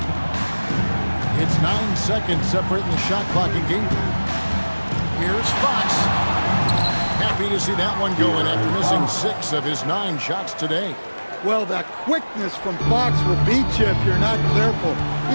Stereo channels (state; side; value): inverted; both; correlation -1.00